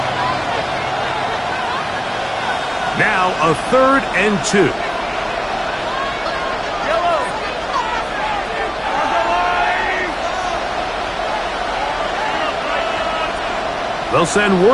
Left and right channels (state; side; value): identical; both; correlation 1.00